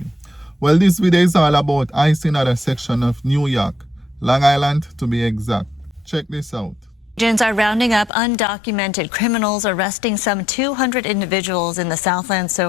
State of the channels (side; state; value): right; drops out; at 8.1 s